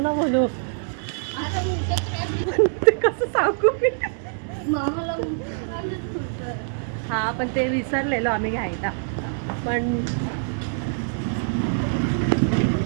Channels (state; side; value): silent; left; digital silence